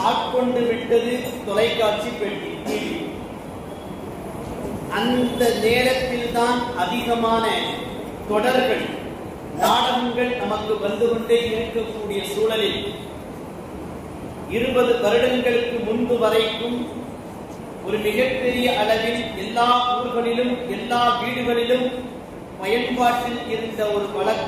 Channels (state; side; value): identical; both; correlation 1.00